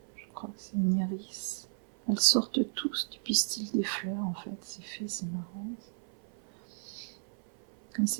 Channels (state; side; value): silent; left; 55 dB below the other